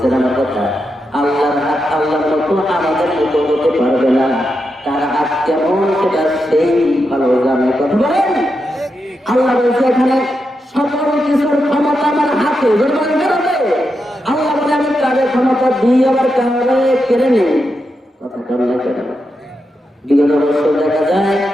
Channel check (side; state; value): both; normal; correlation 0.86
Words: আমার কথা? আল্লাহর হাত আল্লাহর মতো আমাদের মতো হতে পারবে না। তার হাত কেমন সেটা সেই ভালো জানে। কথা বলেন। আল্লাহ বলছে এখানে সকল কিছুর ক্ষমতা আমার হাতে। আল্লাহ বলে আমি কারের ক্ষমতা দিয়ে আবার কারে কেড়ে নেই। কথা বল না কেন? বিগত বছর দেখা যায়